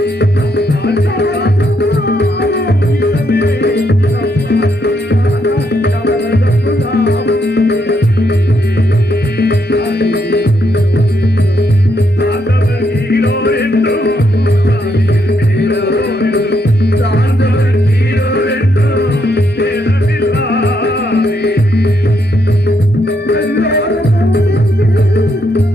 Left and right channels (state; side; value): normal; both; correlation 0.76